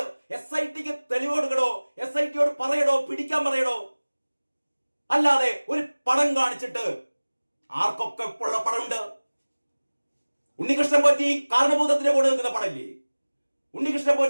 തെളിവ് കൊടുക്കടോ. SITയോട് പറയടോ, പിടിക്കാൻ പറയടോ. അല്ലാതെ ഒരു പടം കാണിച്ചിട്ട് ആർക്കൊക്കെ ഉള്ള പടമുണ്ട്? ഉണ്ണികൃഷ്ണൻ പോറ്റി കാരണഭൂതത്തിന്റെ കൂടെ നിൽക്കുന്ന പടമില്ലേ? ഉണ്ണികൃഷ്ണൻ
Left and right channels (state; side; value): inverted; both; correlation -1.00